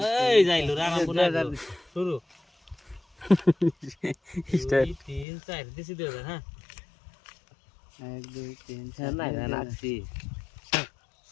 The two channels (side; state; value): right; drops out; at 5.2 s